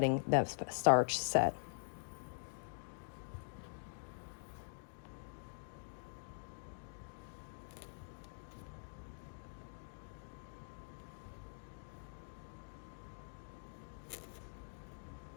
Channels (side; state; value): right; silent; digital silence